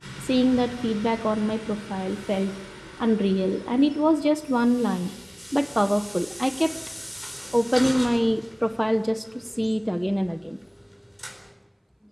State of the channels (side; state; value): both; identical; correlation 1.00